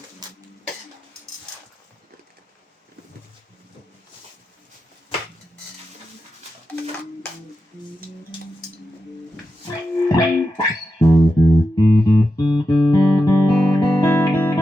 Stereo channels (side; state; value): both; normal; correlation 0.89